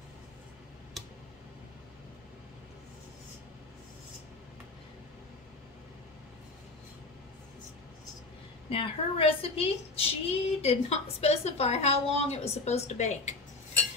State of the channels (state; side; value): quieter; right; 3.3 dB